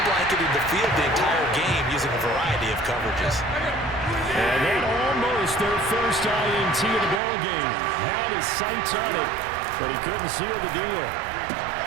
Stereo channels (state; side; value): drops out; left; at 7.2 s